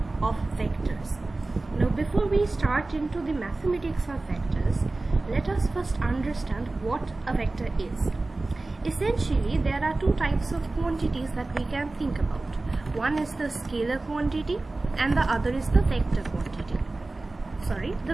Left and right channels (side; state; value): left; quieter; 3.2 dB